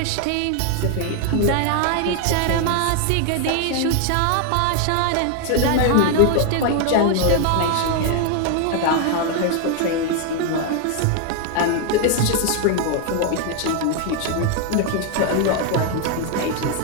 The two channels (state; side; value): different; both; correlation 0.00